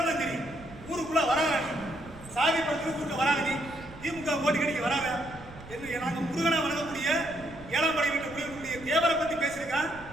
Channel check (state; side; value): noise; right; rumble, 17 dB below the sound